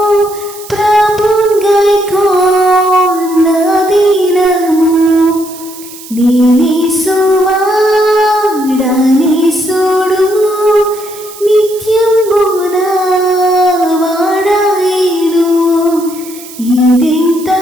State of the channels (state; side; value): noise; right; hiss, 17 dB below the sound